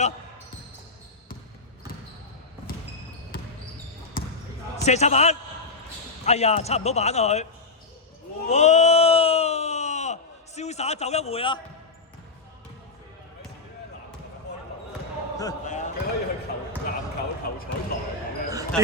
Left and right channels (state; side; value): quieter; right; 3.9 dB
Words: 射插板，哎呀，插唔到板啊佢！哇，瀟灑走一回啊！佢可以去籃球球彩台咁樣，